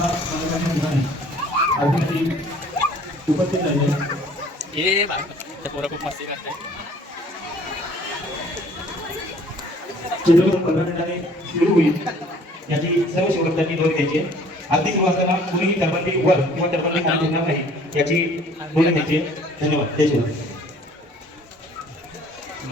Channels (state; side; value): normal; both; correlation 0.54